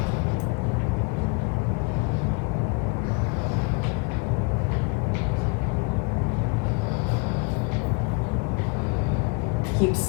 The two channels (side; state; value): right; quieter; 31.1 dB